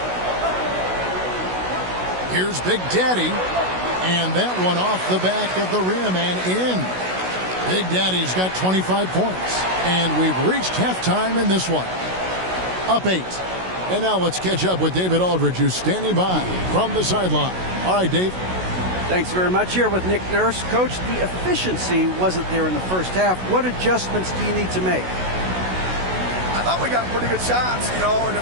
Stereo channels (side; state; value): left; late; 16 ms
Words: Here's Big Daddy. And that one off the back of the rim and in. Big Daddy's got 25 points. And we've reached halftime in this one. Up 8. And now let's catch up with David Aldridge, who's standing by from the sideline. All right, Dave. Thanks very much. Here with Nick Nurse. Coach, the efficiency wasn't there in the first half. What adjustments do you need to make? I thought we got pretty good shots, and